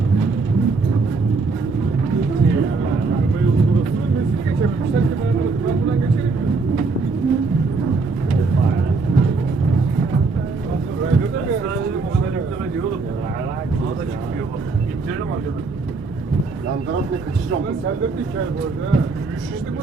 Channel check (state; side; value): quieter; left; 4.0 dB